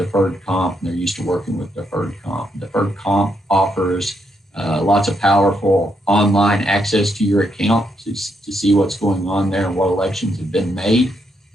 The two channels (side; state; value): both; normal; correlation 0.78